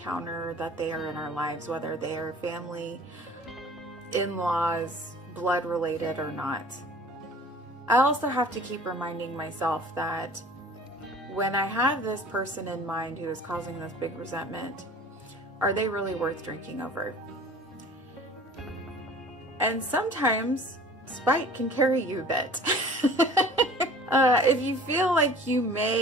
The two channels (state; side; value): normal; both; correlation 0.46